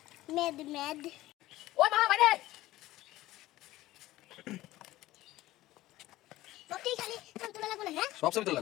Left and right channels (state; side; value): quieter; right; 16.6 dB